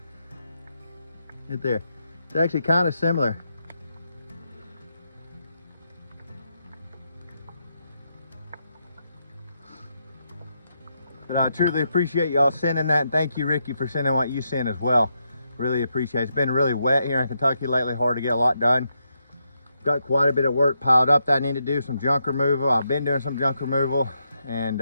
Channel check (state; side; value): inverted; both; correlation -0.82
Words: Right there. It's actually kind of similar. But I truly appreciate y'all sending that, and thank you, Ricky, for sending what you sent as well. Really appreciate it. It's been really wet here in Kentucky lately, hard to get a lot done. Got quite a bit of work piled up that I need to do, some junk removal. I've been doing some junk removal,